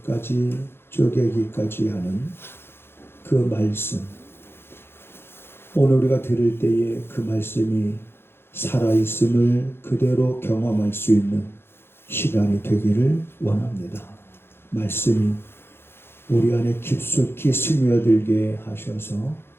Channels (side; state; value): right; late; 0.11 ms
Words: 쪼개기까지 하는 그 말씀, 오늘 우리가 들을 때에 그 말씀이 살아있음을 그대로 경험할 수 있는 시간이 되기를 원합니다. 말씀이 우리 안에 깊숙이 스며들게 하셔서